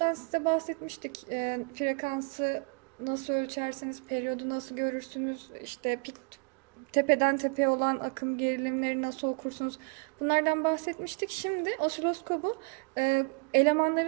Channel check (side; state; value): left; quieter; 34.4 dB